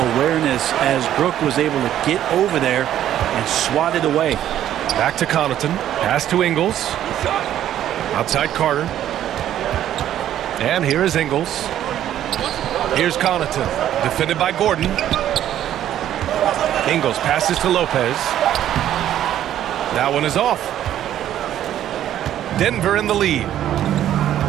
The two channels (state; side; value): quieter; left; 11.5 dB